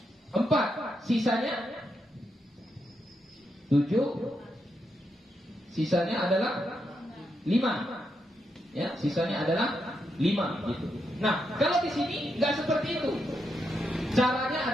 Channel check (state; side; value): normal; both; correlation 0.82